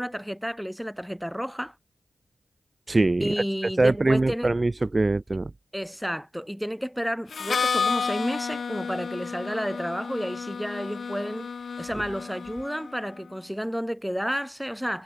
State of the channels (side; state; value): both; normal; correlation 0.96